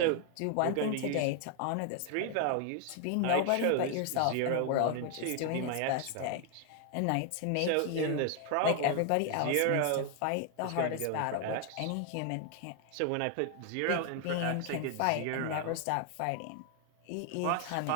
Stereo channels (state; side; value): different; both; correlation 0.00